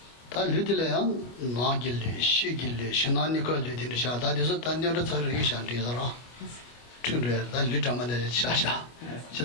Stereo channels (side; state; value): right; late; 25 ms